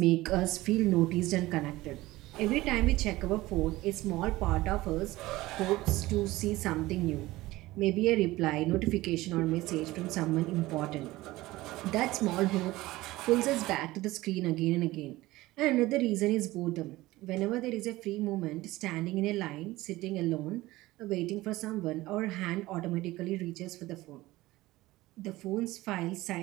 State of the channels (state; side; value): quieter; left; 18.4 dB